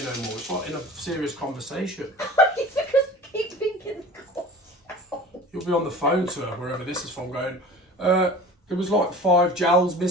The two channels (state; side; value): normal; both; correlation 0.40